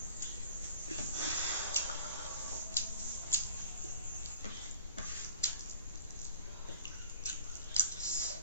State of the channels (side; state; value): both; inverted; correlation -0.46